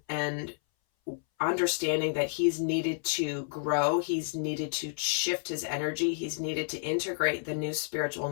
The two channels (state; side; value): silent; right; 58 dB below the other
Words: and understanding that he's needed to grow, he's needed to shift his energy, he's needed to integrate the new spiritual